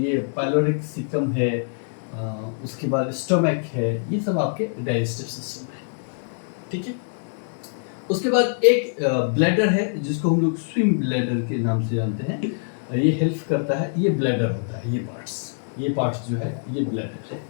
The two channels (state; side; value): silent; right; digital silence